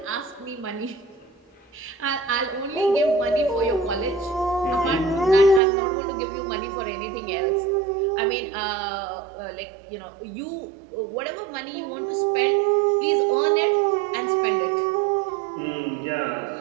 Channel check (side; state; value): left; drops out; at 5.6 s